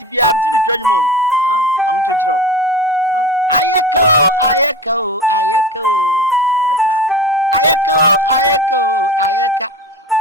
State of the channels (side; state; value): both; normal; correlation 0.32